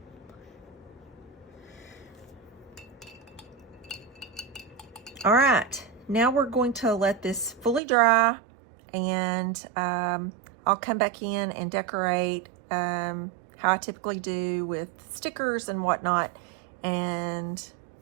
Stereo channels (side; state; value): left; drops out; at 7.8 s